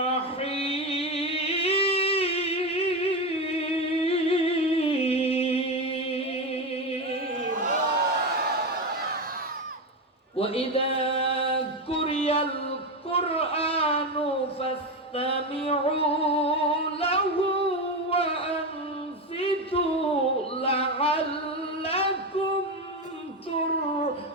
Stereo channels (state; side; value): normal; both; correlation 0.15